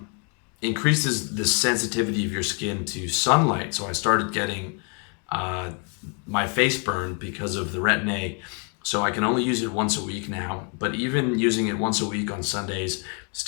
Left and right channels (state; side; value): quieter; right; 38.3 dB